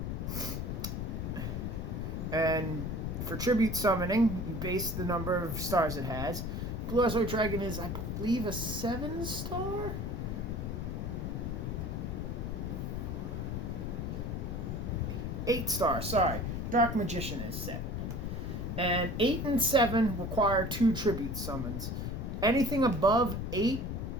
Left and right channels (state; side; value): noise; left; rumble, 3 dB below the sound